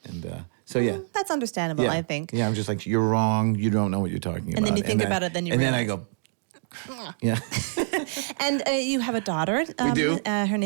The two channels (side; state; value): left; silent; digital silence